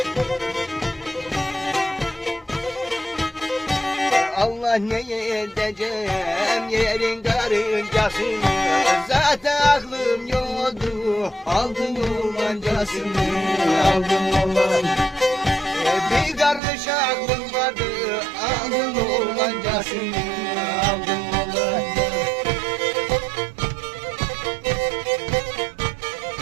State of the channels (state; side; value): drops out; left; at 16.6 s